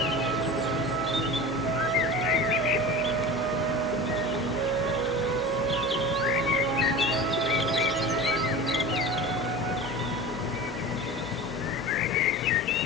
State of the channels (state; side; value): normal; both; correlation 0.33